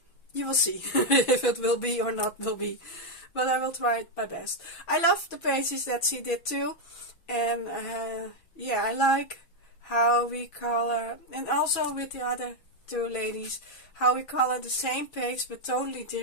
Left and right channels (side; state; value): right; late; 6.0 ms